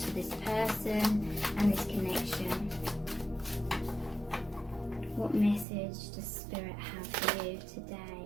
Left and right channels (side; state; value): left; drops out; at 5.7 s